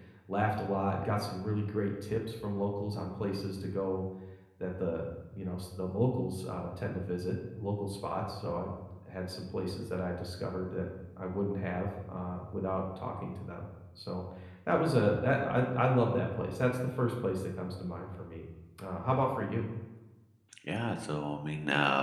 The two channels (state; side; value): identical; both; correlation 1.00